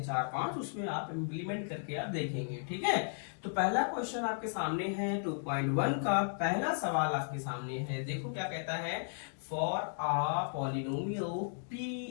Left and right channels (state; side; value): silent; right; digital silence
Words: 4-5 उसमें आप इम्प्लीमेंट करके आप देखेंगे, ठीक है। तो पहला क्वेश्चन आपके सामने है 2.1 का पहला सवाल आपके सामने है। देखो क्या कहता है, फॉर आ पॉलिनोमियल